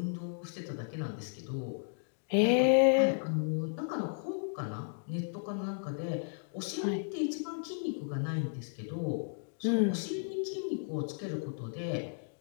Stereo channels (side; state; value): right; silent; digital silence